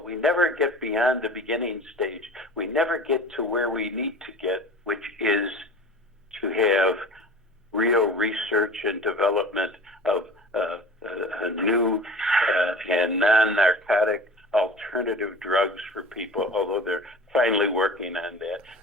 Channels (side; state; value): both; normal; correlation 0.40